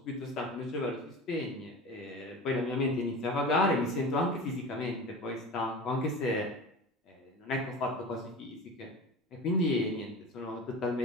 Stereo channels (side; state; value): both; normal; correlation 0.33